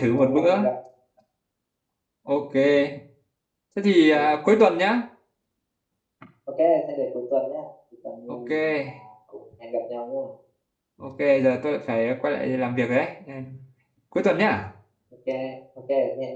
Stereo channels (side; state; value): both; identical; correlation 1.00